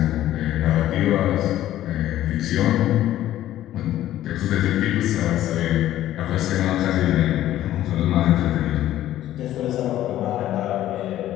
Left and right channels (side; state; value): right; quieter; 13.3 dB